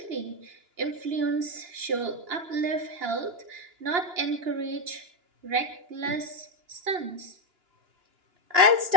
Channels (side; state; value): left; late; 2.9 ms